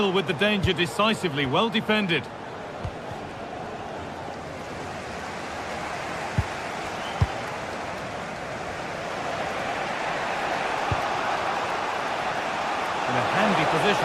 with the danger decisively, well defended. In a handy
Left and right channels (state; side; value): identical; both; correlation 1.00